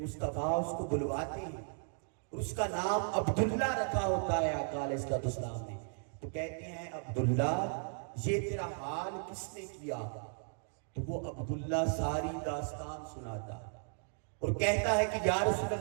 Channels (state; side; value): silent; left; 54 dB below the other